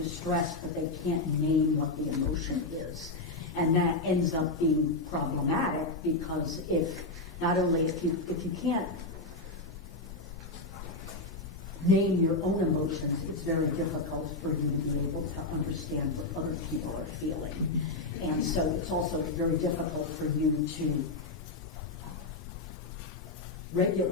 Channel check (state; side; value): quieter; right; 3.1 dB